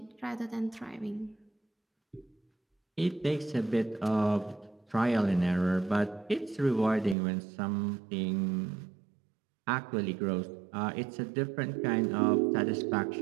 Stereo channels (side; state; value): left; drops out; at 7.2 s